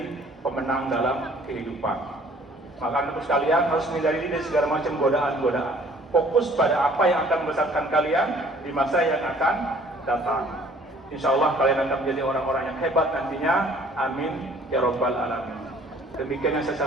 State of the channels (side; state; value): both; normal; correlation 0.55